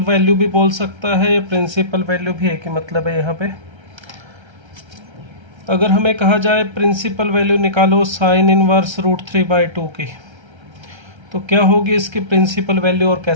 वैल्यू भी बोल सकता है या प्रिंसिपल वैल्यू भी एक ही मतलब है यहाँ पे। अगर हमें कहा जाए प्रिंसिपल वैल्यू निकालो साइन इनवर्स √3/2 की, तो क्या होगी इसकी प्रिंसिपल वैल्यू और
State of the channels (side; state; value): left; late; 1.3 ms